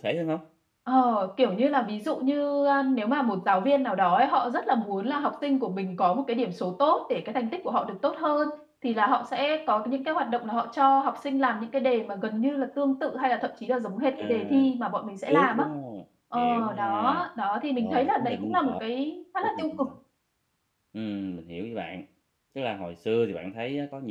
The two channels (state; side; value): identical; both; correlation 1.00